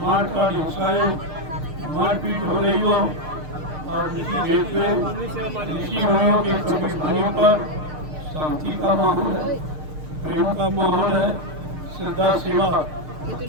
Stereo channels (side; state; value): left; late; 6.6 ms